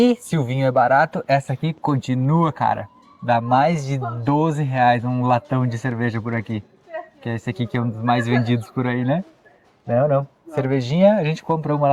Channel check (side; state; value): both; identical; correlation 1.00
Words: se o vinho é barato, essa aqui continua, cara. Dá mais de R$12 um latão de cerveja por aqui. Que é esse aqui que é um dos mais vendidos por aí, né? Não. Cervejinha, a gente compra uma